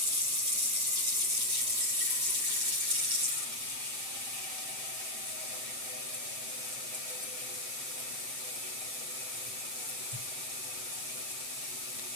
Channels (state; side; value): late; left; 7.7 ms